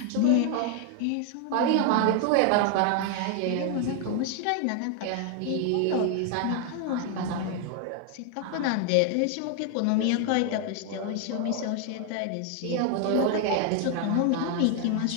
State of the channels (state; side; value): different; both; correlation 0.00